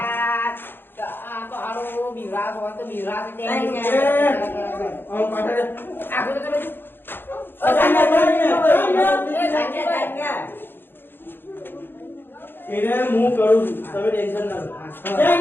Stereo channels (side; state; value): right; late; 0.10 ms